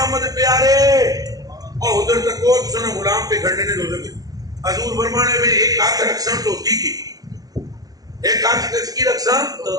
پیارے اور ادھر تک کو سنا غلام پہ کھڑنے نے دوزر کے حضور فرمانے میں ایک ہاتھ رکھسن تو کی ایک ہاتھ کس کی رکھسن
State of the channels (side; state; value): left; late; 0.18 ms